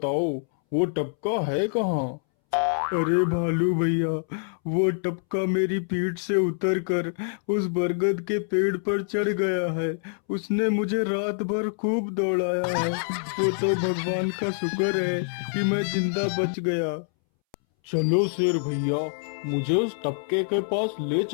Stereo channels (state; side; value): silent; right; 61 dB below the other